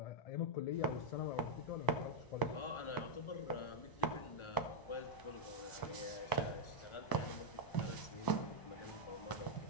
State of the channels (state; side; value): late; right; 1.0 ms